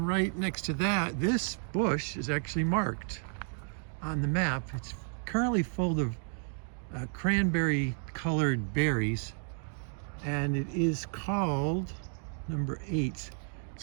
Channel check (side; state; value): left; silent; 56 dB below the other